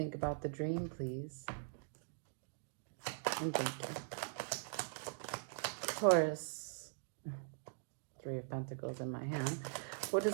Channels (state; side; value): silent; left; digital silence